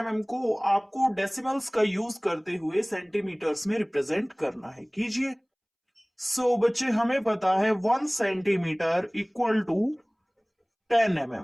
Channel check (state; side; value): identical; both; correlation 1.00